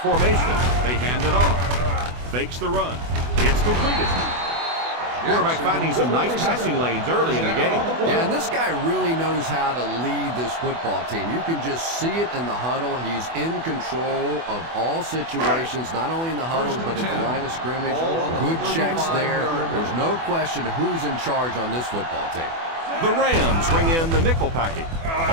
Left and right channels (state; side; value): late; left; 24 ms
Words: They hand it off. Fakes the run. It's completed. Quarterback finding some nice passing lanes early in the game. Yeah, and this guy really knows how to lead this football team. You can just see it in the huddle. He's in control of all situations, not only in the huddle, but at the line of scrimmage. Good checks there. There's no question who's in charge on this football team. The Rams bring in the nickel package.